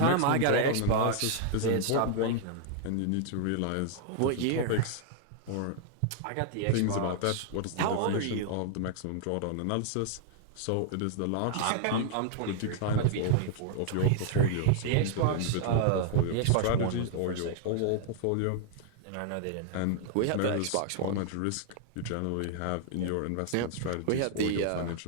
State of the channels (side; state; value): both; different; correlation 0.00